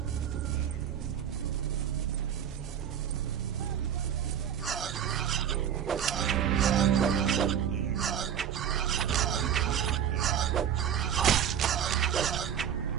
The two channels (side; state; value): left; quieter; 9.1 dB